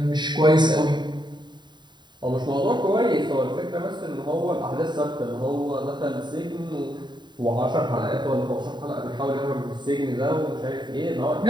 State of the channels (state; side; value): late; left; 0.22 ms